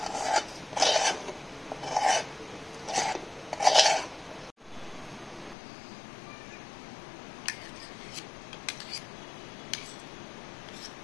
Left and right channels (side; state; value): right; drops out; at 5.6 s